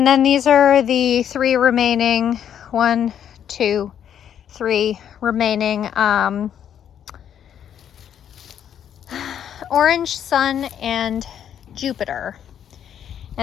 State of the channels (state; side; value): quieter; right; 9.3 dB